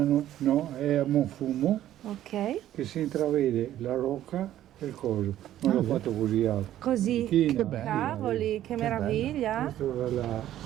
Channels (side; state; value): left; quieter; 12.5 dB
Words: no, è a Monfumo, Ok. che si intravede la rocca e il coso. Non l'ho fatto così alto. Così. China, Che bello. Cavoli, che meraviglia. Questa è